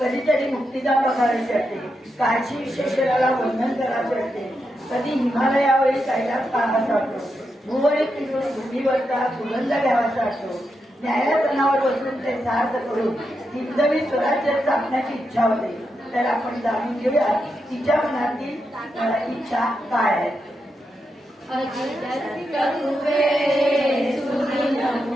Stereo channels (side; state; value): both; normal; correlation 0.85